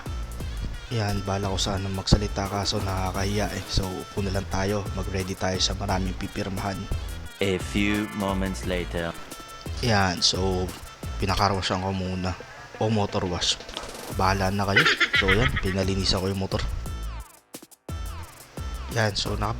Yan, bahala ko sana magsalita kaso nakakahiya eh. So, puno lang tayo, mag-ready tayo sa maraming pipirmahan. A few moments later. Yan, so pinakarwashan ko muna o motor wash, bahala na kayo. So yan, pinalinisan ko yung motor. Yan, so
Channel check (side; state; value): both; identical; correlation 1.00